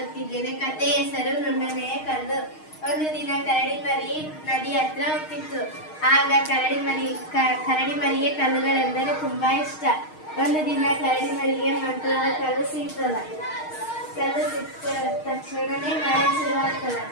ಕಥೆಯ ಹೆಸರು ನುಣ್ಣನೆಯ ಕಲ್ಲು. ಒಂದು ದಿನ ಕರಡಿ ಮರಿ ನದಿ ಹತ್ರ ಹೋಗ್ತಿತ್ತು. ಆಗ ಕರಡಿ ಮರಿಗೆ ಕಲ್ಲುಗಳೆಂದರೆ ತುಂಬಾ ಇಷ್ಟ. ಒಂದು ದಿನ ಕರಡಿ ಮರಿಗೆ ಮಂತ್ರದ ಕಲ್ಲು ಸಿಗ್ತದ. ಕಲ್ಲು ಸಿಕ್ಕ ತಕ್ಷಣನೇ ಮಳೆ ಶುರುವಾಗ್ತದ.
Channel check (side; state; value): right; late; 6.4 ms